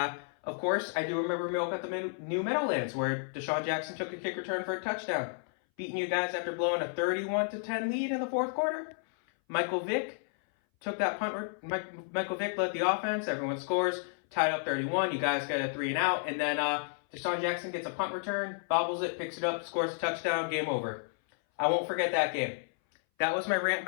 course, I do remember Miracle at the New Meadowlands where Deshaun Jackson took a kick return for a touchdown, beating you guys after blowing a 31-10 lead in the fourth quarter. Michael Vick, took that punt. Michael Vick led the offense. Everyone scores. Tied up 31. You guys get a 3 and out. And then Deshaun Jackson gets a punt return, bobbles it, picks it up, scores a touchdown. Game over. I won't forget that game. That was my rant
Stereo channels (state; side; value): silent; right; 57 dB below the other